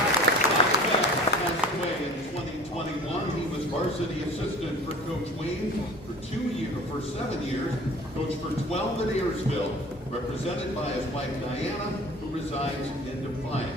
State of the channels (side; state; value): both; normal; correlation 0.44